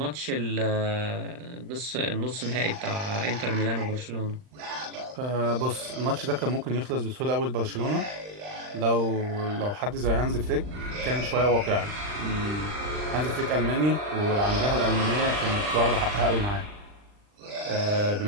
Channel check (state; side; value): late; left; 39 ms